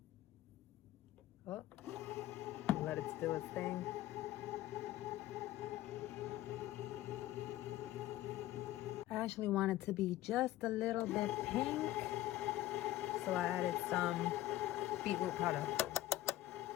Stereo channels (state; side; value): quieter; right; 14.9 dB